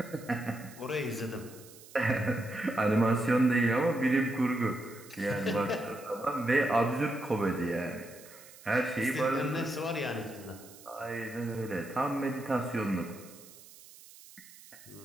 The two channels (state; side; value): noise; right; hiss, 20 dB below the sound